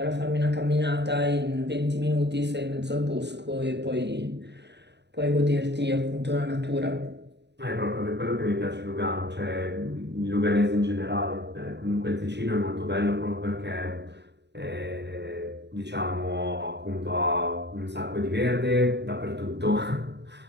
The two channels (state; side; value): late; left; 0.50 ms